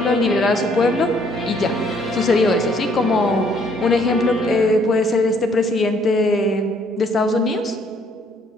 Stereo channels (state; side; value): normal; both; correlation 0.65